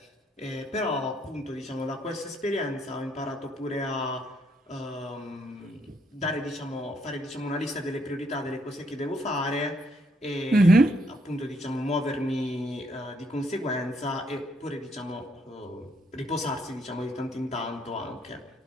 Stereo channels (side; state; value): both; normal; correlation 0.72